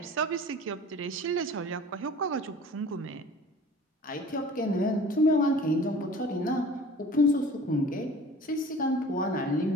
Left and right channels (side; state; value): both; normal; correlation 0.44